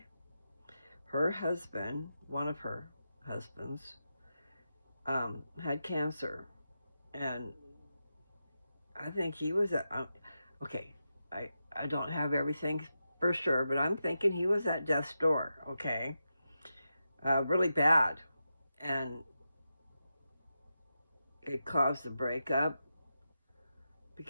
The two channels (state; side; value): inverted; both; correlation -0.89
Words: her husband, one of her husbands, had cancer, and I think he was at, okay, I don't have everything for sure, but I'm thinking he was at death's door, okay? Really bad, and it caused the breakup